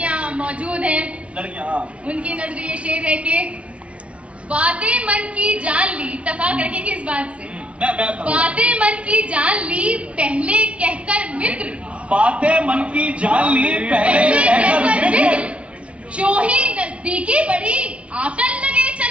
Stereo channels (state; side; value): late; left; 0.062 ms